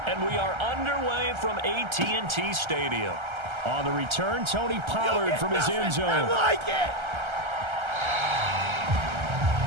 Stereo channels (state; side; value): late; left; 1.3 ms